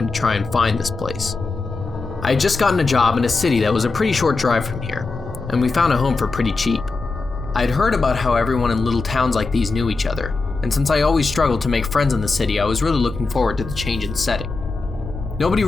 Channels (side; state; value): right; quieter; 3.9 dB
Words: to try and find this place. I had just gotten a job in a city that was a pretty short drive from here, and we found a home for pretty cheap. I'd heard about how everyone in little towns like these knew each other, and since I always struggled to make friends in the city, I was really looking forward to the change in setting. Nobody